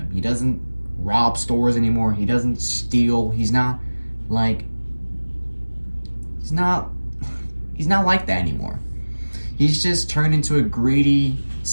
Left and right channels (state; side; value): inverted; both; correlation -1.00